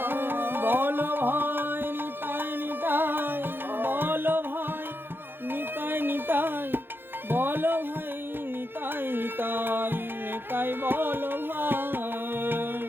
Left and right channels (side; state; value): left; late; 0.10 ms